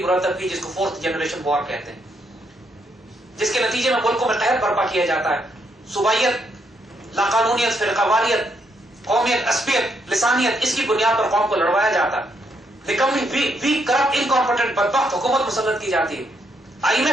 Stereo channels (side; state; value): both; normal; correlation 0.76